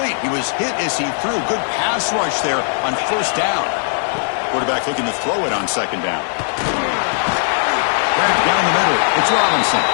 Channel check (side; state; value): right; silent; 67 dB below the other